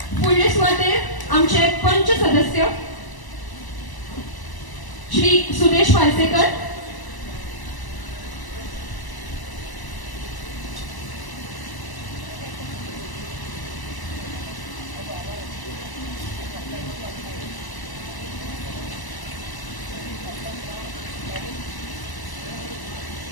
फुडले सुवातेर आमचे पंच सदस्य श्री सुदेश पार्सेकर,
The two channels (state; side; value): late; right; 1.0 ms